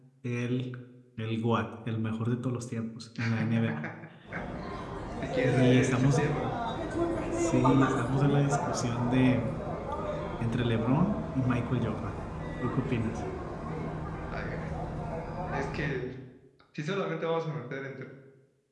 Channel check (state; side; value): identical; both; correlation 1.00